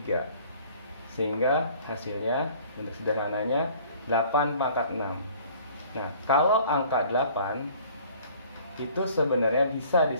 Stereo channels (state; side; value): inverted; both; correlation -0.53